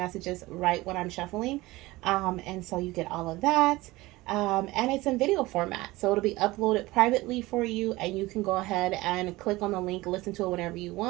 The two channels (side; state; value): left; quieter; 19.8 dB